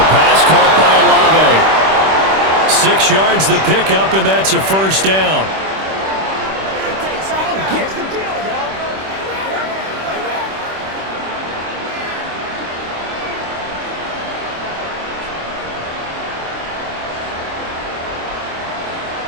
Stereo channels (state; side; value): late; left; 26 ms